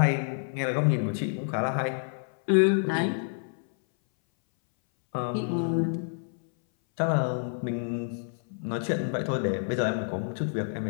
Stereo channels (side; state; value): right; silent; 59 dB below the other